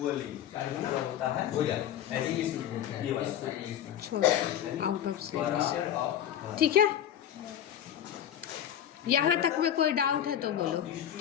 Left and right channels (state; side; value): quieter; right; 10.4 dB